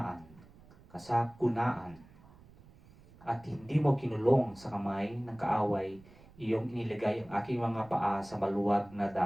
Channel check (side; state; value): right; noise; rumble, 24 dB below the sound